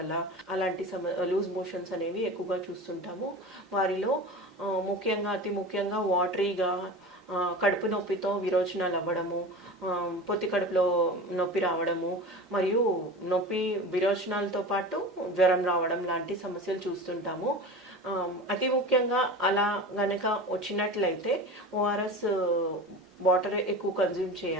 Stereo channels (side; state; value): both; normal; correlation 0.32